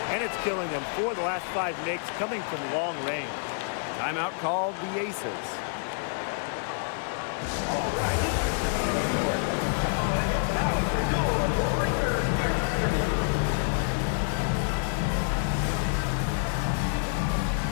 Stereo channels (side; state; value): right; silent; digital silence